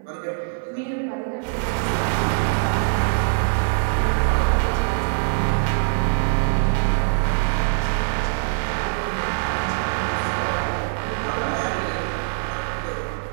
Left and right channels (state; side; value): silent; left; 63 dB below the other